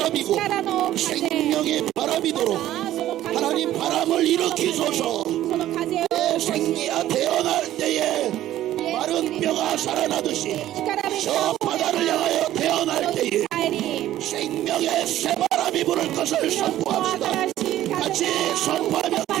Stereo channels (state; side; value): quieter; left; 13.4 dB